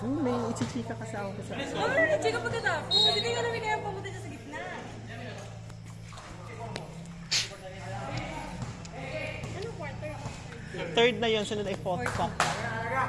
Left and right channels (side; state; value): both; identical; correlation 1.00